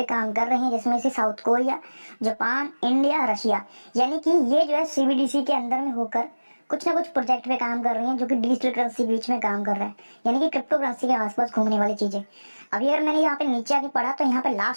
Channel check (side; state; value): both; inverted; correlation -1.00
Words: काम कर रही हैं, जिसमें से south Korea, Japan, India, Russia, यानी कि ये जो है सीबीडीसी के अंदर में होकर कुछ ना कुछ प्रोजेक्ट पे काम कर रही हैं, जो कि डिजिटल करेंसी के बीच में काम कर रहा है, यानी कि क्रिप्टो करेंसी के आसपास घूमने वाली चीजें। अभी अगर मैंने यहाँ पे नीचे आके पढ़ा तो यहाँ पे